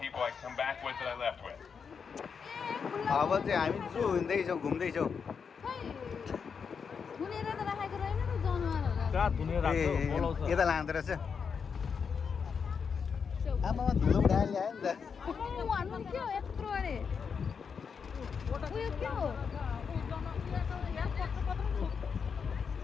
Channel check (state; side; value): quieter; right; 6.2 dB